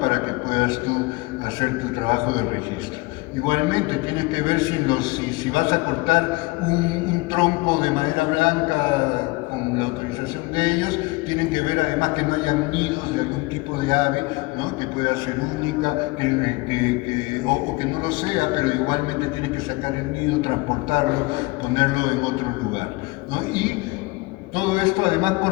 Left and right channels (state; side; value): quieter; right; 23.5 dB